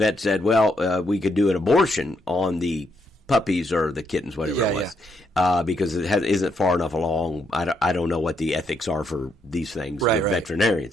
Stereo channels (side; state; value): both; normal; correlation 0.76